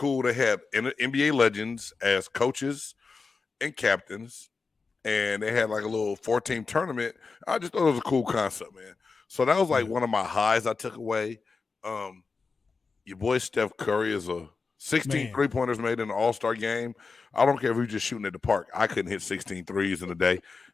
to have NBA legends as coaches and captains, and they had like a little 4-team tournament. I just thought it was a cool concept, man. So that was like one of my highs I took away. Your boy Steph Curry is a 16 3-pointers made in an all-star game. I don't care if you're just shooting at the park. I couldn't hit 16 threes in a day.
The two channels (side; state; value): right; quieter; 4.5 dB